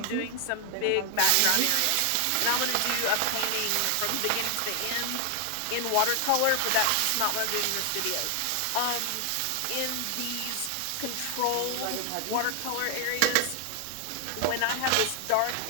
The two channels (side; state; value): both; different; correlation 0.00